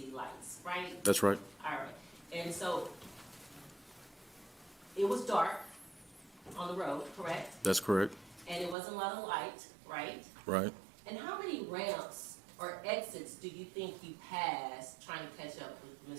lights, right? That's right. All right. And so it was dark on the road, correct? That's correct. And it wasn't a lot of light, right? Right. And how many ramps or exits do you think you passed trying to catch up with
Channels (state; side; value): drops out; left; at 8.8 s